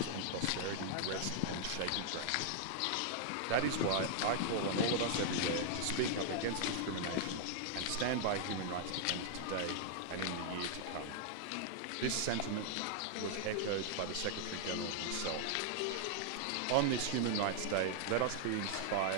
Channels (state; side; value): different; both; correlation -0.01